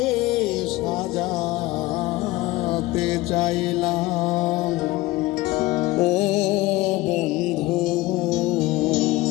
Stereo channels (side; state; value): right; quieter; 19.1 dB